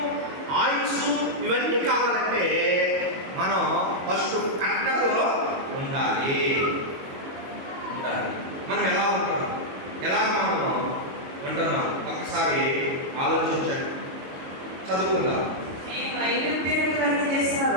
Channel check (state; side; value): late; left; 22 ms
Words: ఆయుస్సు ఇవన్నీ కావాలంటే మనం ఫస్ట్ కట్టడలో ఉండాలి. మనం ఎలా ఉంటున్నాం, ఎలాగ మనం ఉంటున్నాం ఒక్కసారి ఆలోచించండి. చదువుకుందాం.